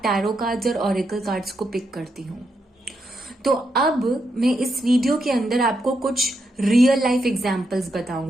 टैरो कार्ड्स और ऑरेकल कार्ड्स को पिक करती हूँ। तो अब मैं इस वीडियो के अंदर आपको कुछ रियल लाइफ एग्जाम्पल्स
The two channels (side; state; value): both; normal; correlation 0.82